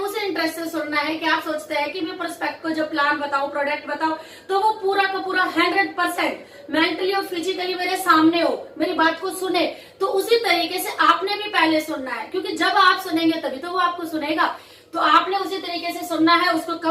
इंटरेस्ट से सुनना है कि आप सोचते हैं कि मैं प्रोस्पेक्ट को जब प्लान बताऊं, प्रोडक्ट बताऊं, तो वो पूरा का पूरा 100% मेंटली और फिजिकली मेरे सामने हो, मेरी बात को सुने। तो उसी तरीके से आपने भी पहले सुनना है, क्योंकि जब आप सुनेंगे तभी तो वो आपको सुनेगा। तो आपने उसी तरीके से सुनना है, उसको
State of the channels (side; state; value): both; identical; correlation 1.00